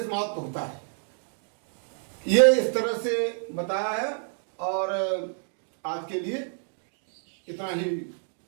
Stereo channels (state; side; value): silent; left; digital silence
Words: महत्व होता है। ये इस तरह से बताया है। और आज के लिए इतना ही